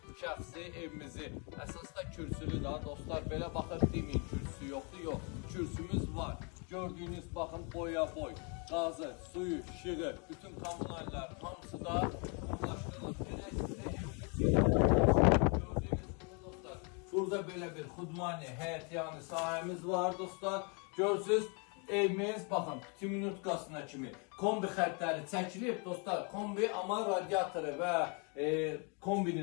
şəxsi evimizi. Əsasda kürsülü da dostlar, belə baxıb deməyin kürsü yoxdur, yox. Kürsümüz var. Gördüyünüz baxın boya boy, qazı, suyu, işığı, bütün kommunallar hamısı da ulaşdırılıb. Burada belə bir xudmani, həyətyanı sahəmiz var dostlar. Görürsünüz, evimiz, baxın, 2 minutkasına kimi kombi xəttləri çəkilib dostlar. Kombi, amma radiatoru və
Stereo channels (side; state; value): right; quieter; 35.3 dB